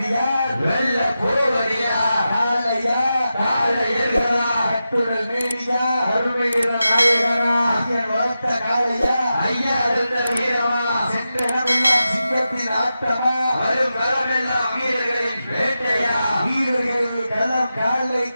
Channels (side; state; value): both; inverted; correlation -0.91